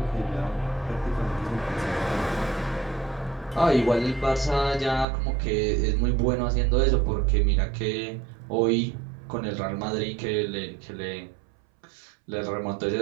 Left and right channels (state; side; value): drops out; left; at 5.1 s